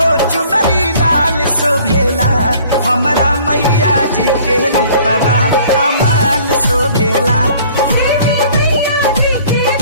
चुनरी लाल शोभेला, हमारा मैया जी के रूपवा कमाल शोभेला।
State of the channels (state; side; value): inverted; both; correlation -0.53